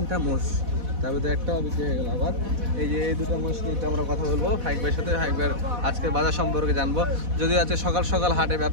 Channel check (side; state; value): left; late; 4.1 ms